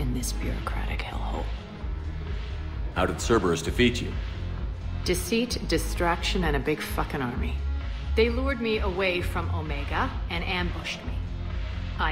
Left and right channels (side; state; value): both; identical; correlation 1.00